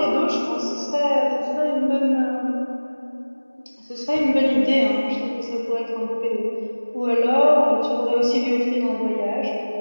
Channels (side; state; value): both; inverted; correlation -1.00